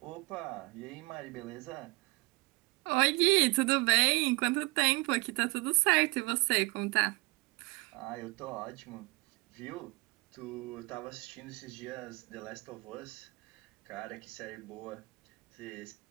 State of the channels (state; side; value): quieter; left; 25.8 dB